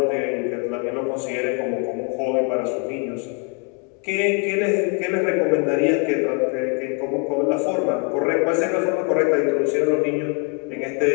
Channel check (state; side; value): quieter; right; 35.8 dB